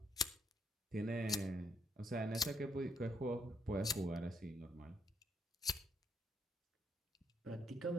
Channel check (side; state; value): both; normal; correlation 0.71